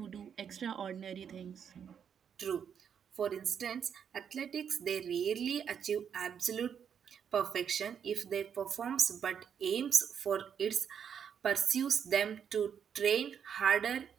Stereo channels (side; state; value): left; quieter; 7.8 dB